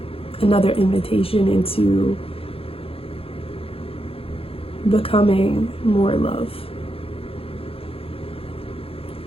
another invitation into becoming more love.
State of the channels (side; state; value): right; late; 0.27 ms